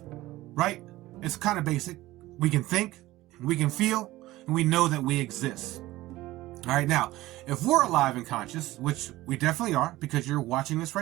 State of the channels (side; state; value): left; quieter; 17.4 dB